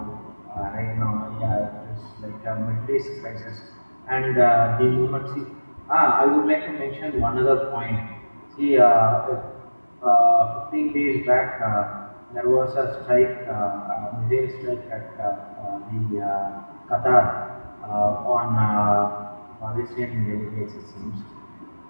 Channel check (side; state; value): both; inverted; correlation -1.00